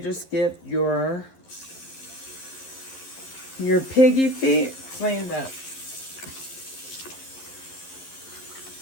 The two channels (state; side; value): late; right; 11 ms